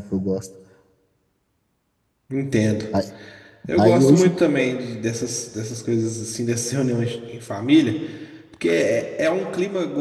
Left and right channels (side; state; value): both; identical; correlation 1.00